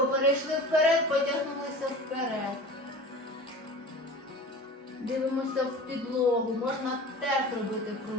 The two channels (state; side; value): normal; both; correlation 0.38